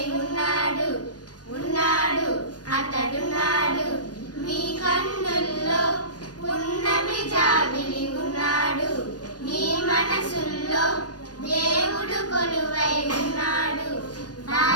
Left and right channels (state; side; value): late; right; 0.69 ms